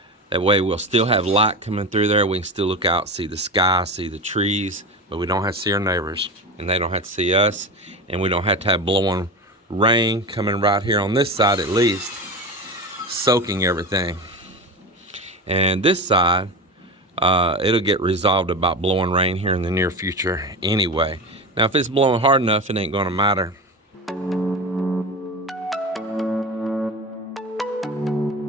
way we'll still have light coming through there. We can still look out, see the sky, see the trees, but we don't have to see our neighbors, and they don't have to see us, and we don't have to have blowing rain coming right here on this side at least, soaking everything. And this side, it'll get resolved about blowing rain here in the near future anyway. Now, if it's blowing hard enough, it ain't gonna matter.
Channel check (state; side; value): normal; both; correlation 0.25